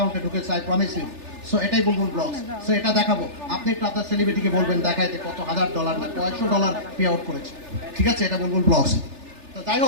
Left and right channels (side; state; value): left; late; 3.4 ms